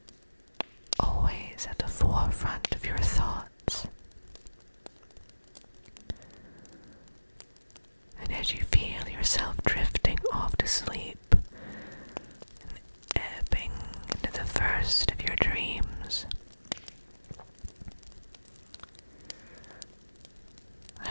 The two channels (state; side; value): inverted; both; correlation -1.00